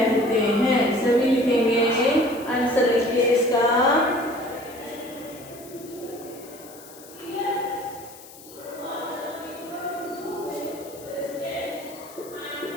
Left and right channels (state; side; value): noise; left; hiss, 19 dB below the sound